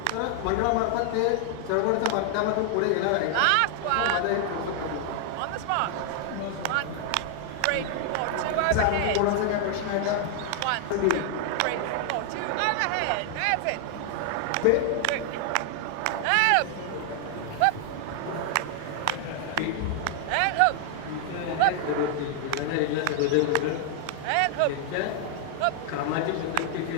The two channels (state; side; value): different; both; correlation 0.00